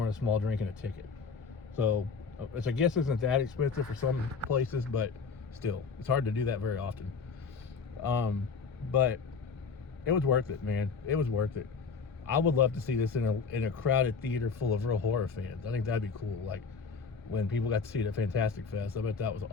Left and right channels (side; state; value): right; quieter; 5.3 dB